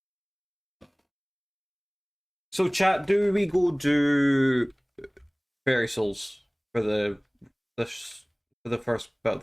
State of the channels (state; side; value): identical; both; correlation 1.00